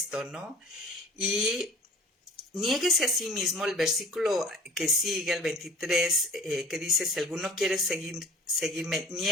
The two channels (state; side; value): normal; both; correlation 0.44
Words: ¿no? Y niéguese a sí mismo, el versículo que sigue, el 23, que dice, si alguno quiere seguirme,